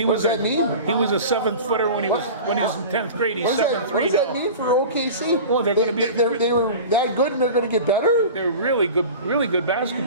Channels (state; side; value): inverted; both; correlation -0.35